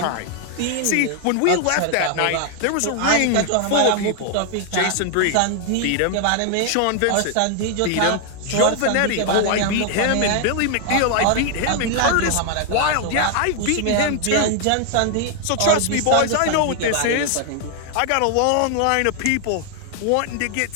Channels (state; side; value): different; both; correlation 0.00